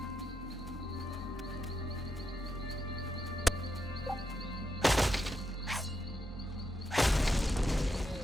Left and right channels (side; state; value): both; normal; correlation 0.83